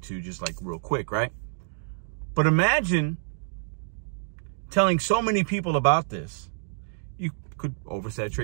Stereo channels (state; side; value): silent; left; digital silence